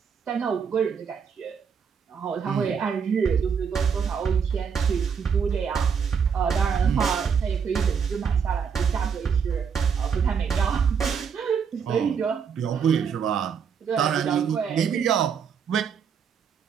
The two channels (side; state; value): left; quieter; 6.7 dB